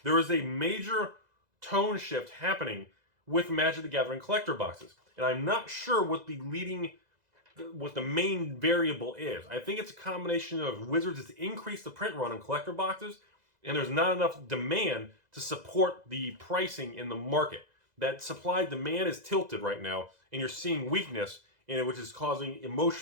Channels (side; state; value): left; late; 2.0 ms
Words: There is a major tone shift happening with Magic the Gathering collector boxes. And I'm not sure what the main variable is. I think it's a combination of Wizards has increased the print run on collector boxes, and there's not enough demand to support the pricing in the market. That supply-demand is tilted right now, and you're seeing weakness in it, which is causing